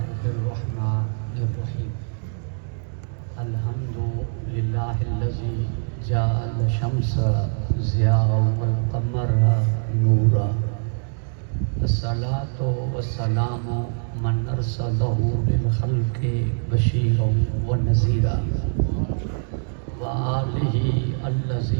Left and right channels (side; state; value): left; silent; digital silence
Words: الرحمن الرحيم الحمد لله الذي جعل الشمس ضياء والقمر نورا الصلاة والسلام من أرسله للخلق بشيرا ونذيرا وآله